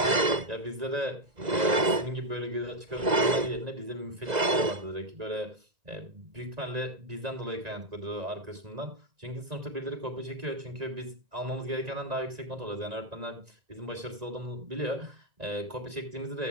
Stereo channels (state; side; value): late; left; 1.9 ms